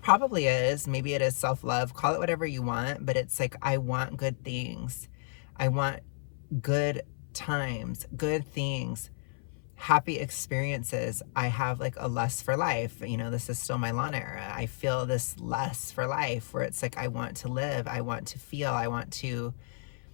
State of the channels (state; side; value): silent; right; 57 dB below the other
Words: probably is. Maybe it is self-love. Call it whatever you want, but it's like I want good things. I want good times, good things, happy experiences. I have like a lust for life. You know, this is still my Lana era. I feel this lust for life where it's like I want to live, I want to feel, I want